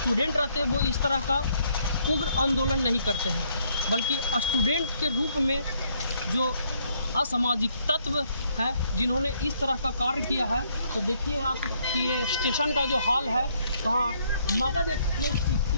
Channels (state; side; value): inverted; both; correlation -0.70